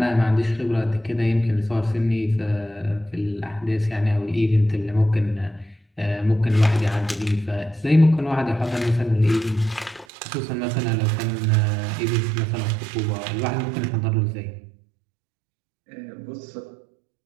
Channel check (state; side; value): drops out; left; at 10.1 s